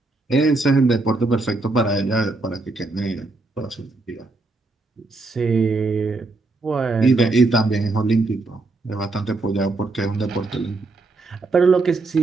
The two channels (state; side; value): quieter; left; 3.4 dB